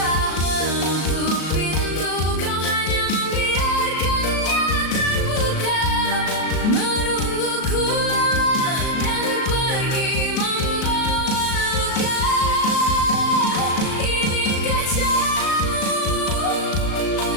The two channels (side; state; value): right; late; 38 ms